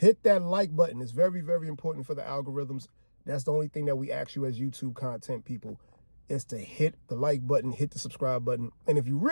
that like button. It's very, very important for the algorithms. That's the only thing that we ask you as YouTube content people, is to hit the like button, hit the subscribe button. And if you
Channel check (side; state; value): both; inverted; correlation -1.00